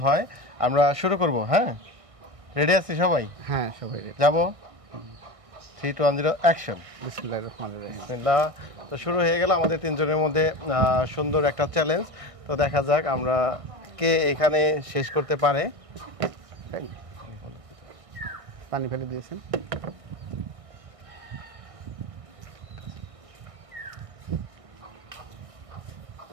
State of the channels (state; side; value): late; left; 1.6 ms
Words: হয়। আমরা শুরু করব। হ্যাঁ, রেডি আছি সবাই? হ্যাঁ, সবাই রেডি। যাব। 3 2 1 0 অ্যাকশন। বিসমিল্লাহির রহমানির রহিম। বিসমিল্লাহ। তো শুরু হয়ে গেল আমাদের 3 জনের মধ্যে সুন্দর একটা চ্যালেঞ্জ। তো দেখা যাক আমরা কে এখানে শেষ করতে পারে। পানি ফেলে দিয়েছেন।